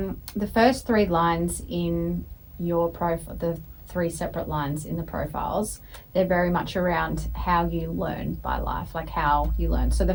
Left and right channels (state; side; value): identical; both; correlation 1.00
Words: first 3 lines in your profile, the 3 separate lines in the profiles, they're very much around how you learn by life, like how you learn. So the